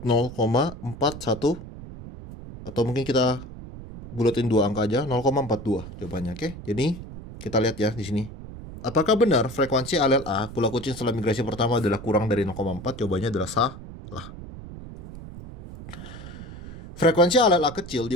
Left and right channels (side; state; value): right; noise; rumble, 13 dB below the sound